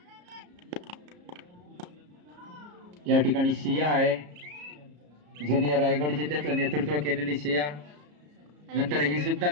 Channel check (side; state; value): left; late; 34 ms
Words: या ठिकाणी शिया आहे, जिने रायगड जिल्ह्याचं नेतृत्व केलेली शिया. नंतर ही सुद्धा